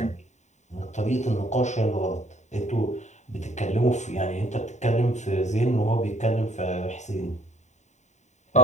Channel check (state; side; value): late; right; 0.34 ms